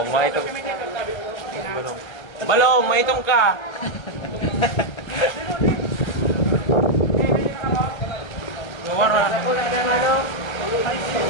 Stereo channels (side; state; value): right; late; 1.2 ms